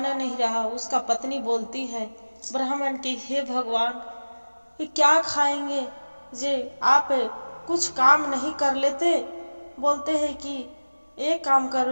नहीं रहा, उसका पत्नी बोलती है ब्राह्मण की, हे भगवान, ये क्या खाएंगे जे आप कुछ काम नहीं कर लेते। बोलते हैं कि एक काम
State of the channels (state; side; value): inverted; both; correlation -1.00